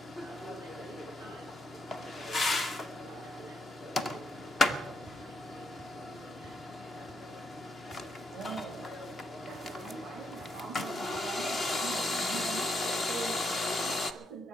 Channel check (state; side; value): normal; both; correlation 0.78